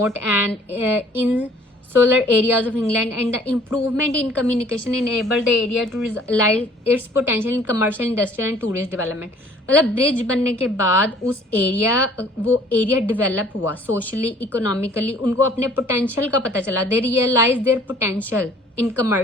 and insular areas of England, and the improvement in communication enabled the area to realize its potential in commercial, industrial and tourist development। मतलब bridge बनने के बाद वो area develop हुआ socially, economically, उनको अपने potential का पता चला। They realise their potential in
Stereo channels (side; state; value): both; normal; correlation 0.55